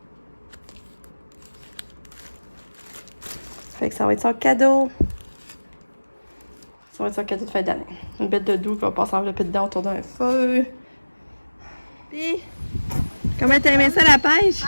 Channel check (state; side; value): inverted; both; correlation -1.00